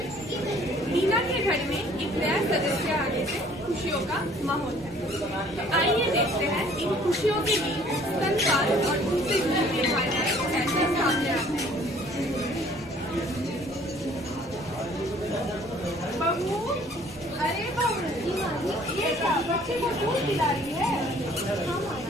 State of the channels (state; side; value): normal; both; correlation 0.56